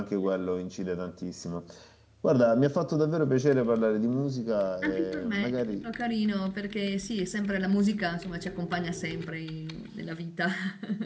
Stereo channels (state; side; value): identical; both; correlation 1.00